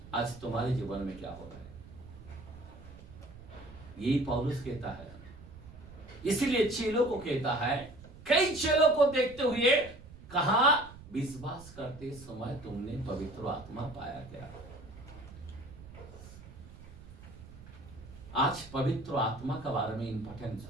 आज तुम्हारे जीवन में क्या हो रहा है, यही पौलुस कहता है। इसीलिए चेलों को कहता है, कई चेलों को देखते हुए कहा विश्वास करते समय तुमने पवित्र आत्मा पाया क्या? आज पवित्र आत्मा के बारे में इंपॉर्टेंस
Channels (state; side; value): noise; right; rumble, 17 dB below the sound